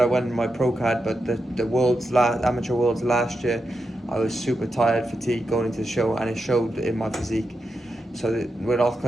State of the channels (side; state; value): both; normal; correlation 0.87